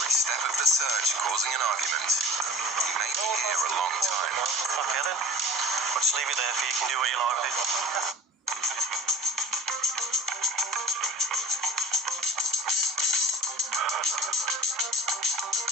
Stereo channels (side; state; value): both; normal; correlation 0.42